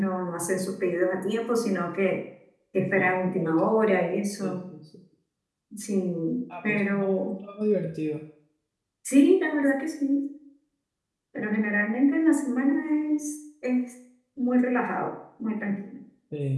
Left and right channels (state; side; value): identical; both; correlation 1.00